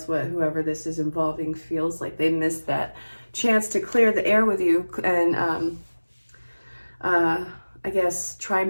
what whoever this is involving feels like. They missed that chance to clear the air with you and I guess try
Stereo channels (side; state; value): both; inverted; correlation -1.00